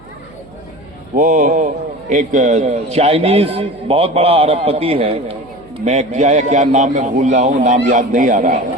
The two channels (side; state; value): right; noise; hum, 26 dB below the sound